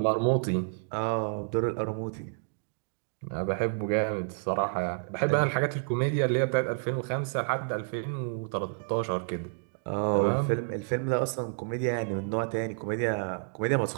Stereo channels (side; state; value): left; silent; digital silence